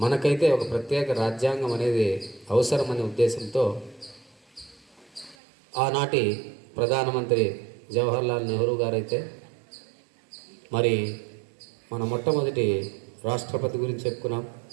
ఒక ప్రత్యేక రాజ్యాంగం అనేది అవసరమనే ఉద్దేశంతో ఆనాటి ప్రధానమంత్రి జవహర్లాల్ నెహ్రూ గారైతే మరి మన మొట్టమొదటి రాష్ట్రపతి గురించి చెప్పుకున్నాం,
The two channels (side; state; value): left; drops out; at 5.4 s